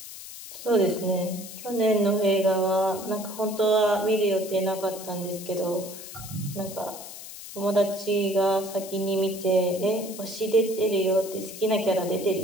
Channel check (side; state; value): left; noise; hiss, 13 dB below the sound